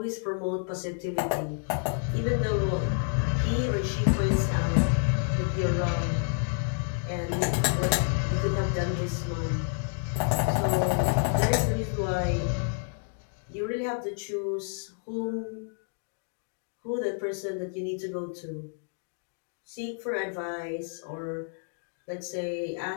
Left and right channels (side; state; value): right; silent; 58 dB below the other